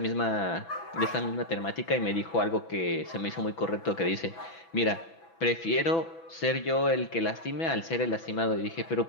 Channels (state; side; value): late; right; 6.0 ms